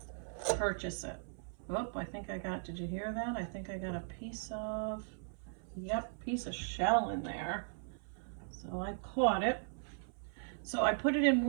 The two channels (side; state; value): left; silent; 52 dB below the other